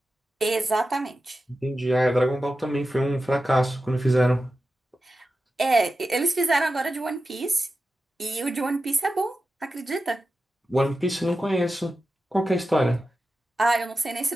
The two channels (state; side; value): normal; both; correlation 0.92